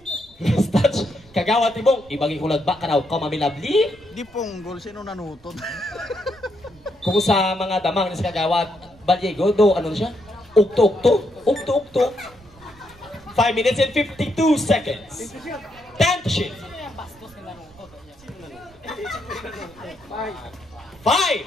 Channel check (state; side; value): noise; right; rumble, 26 dB below the sound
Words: Last touch. Kagawad Timong. Ibagi kulad ba? Karaw ka mamilabli? Di ponggol, sino nanutod? Kung sa mga damang ni Kagawad Baliego, do, ano siya? Ukto-ukto. Ukto-ukto. 5 minutes and 52 seconds. 10 to shoot. 5.